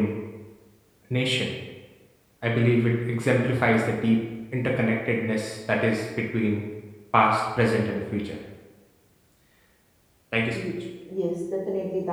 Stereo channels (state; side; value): identical; both; correlation 1.00